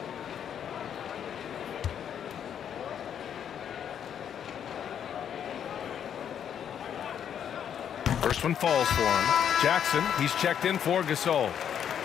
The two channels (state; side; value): quieter; right; 8.9 dB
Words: First one falls for him. Jackson, he's checked in for Gasol.